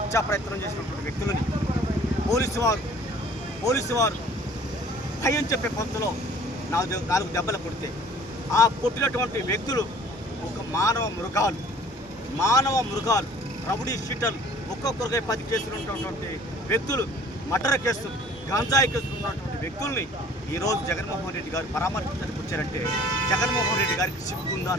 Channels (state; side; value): normal; both; correlation 0.52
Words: ప్రయత్నం చేసినటువంటి వ్యక్తులని పోలీసు వారు భయం చెప్పే పంతులో 4 దెబ్బలు కొడితే ఆ కొట్టినటువంటి వ్యక్తులు ఒక మానవ మృగాలు రౌడీ షీటర్లు ఒక్కొక్కరికై 10 కేసులు ఉన్నటువంటి వ్యక్తులు, మర్డర్ కేసులు, గంజాయి కేసులు ఉన్నటువంటి వ్యక్తుల్ని ఈరోజు జగన్మోహన్ రెడ్డి గారు పరామర్శించడానికి వచ్చారంటే జగన్మోహన్ రెడ్డి గారికి